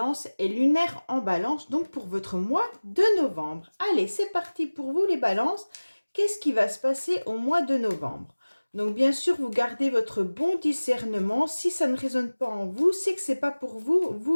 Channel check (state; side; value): inverted; both; correlation -1.00